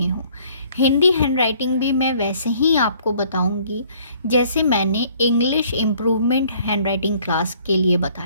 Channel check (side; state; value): both; inverted; correlation -0.59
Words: हूँ। हिंदी हैंडराइटिंग भी मैं वैसे ही आपको बताऊँगी जैसे मैंने इंग्लिश इम्प्रूवमेंट हैंडराइटिंग क्लास के लिए